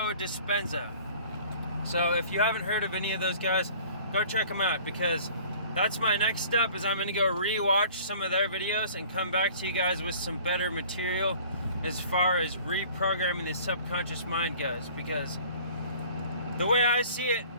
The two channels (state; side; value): inverted; both; correlation -0.49